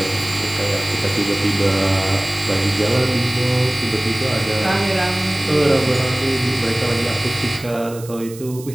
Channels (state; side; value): noise; right; hiss, 18 dB below the sound